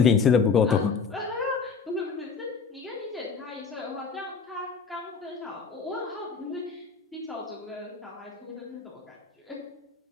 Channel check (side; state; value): right; quieter; 5.4 dB